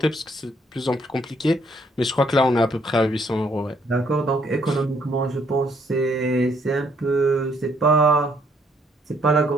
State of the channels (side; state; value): both; normal; correlation 0.68